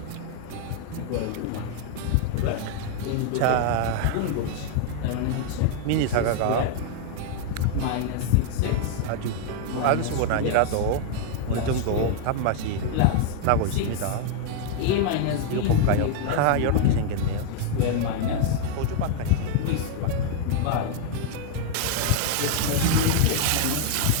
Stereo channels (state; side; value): different; both; correlation 0.00